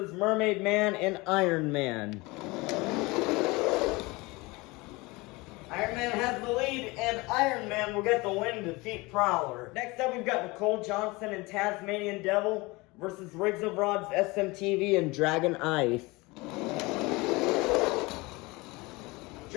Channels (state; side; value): quieter; right; 23.6 dB